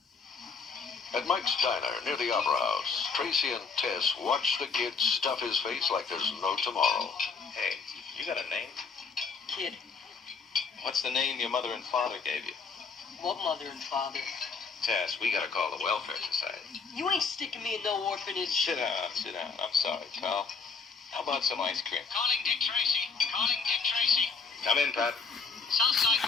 At Mike's Diner, near the Opera House, Tracy and Tess watch the kid stuff his face like there's no tomorrow. Hey, you got a name? Kid. What's the name your mother and father gave you? What mother and father? Tess, we gotta call the Welfare Society. You ain't sticking me in no orphanage. Sit down. I'm sorry, pal. How about some ice cream? Calling Dick Tracy. Calling Dick Tracy. Come in, Pat. Southside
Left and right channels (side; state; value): right; quieter; 5.0 dB